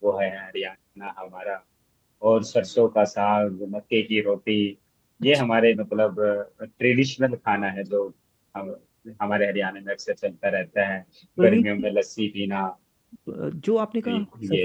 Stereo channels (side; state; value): both; identical; correlation 1.00